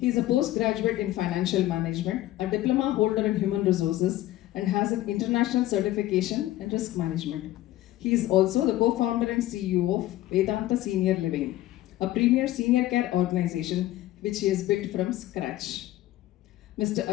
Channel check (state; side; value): quieter; right; 15.2 dB